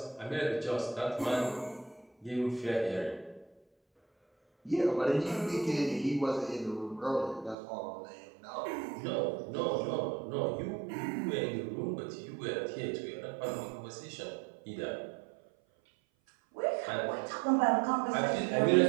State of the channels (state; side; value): drops out; left; at 7.6 s